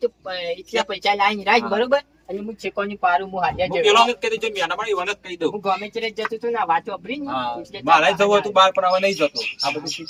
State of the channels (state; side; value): identical; both; correlation 1.00